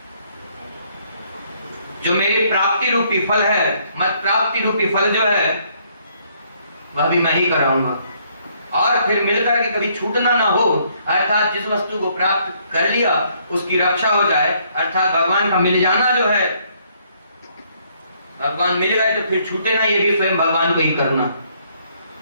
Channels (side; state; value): both; inverted; correlation -0.68